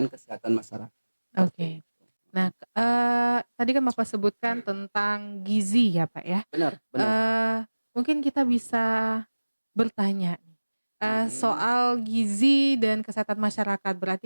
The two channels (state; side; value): inverted; both; correlation -1.00